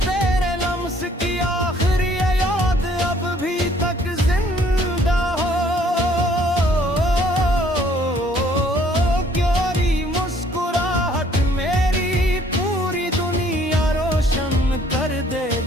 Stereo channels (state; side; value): normal; both; correlation 0.61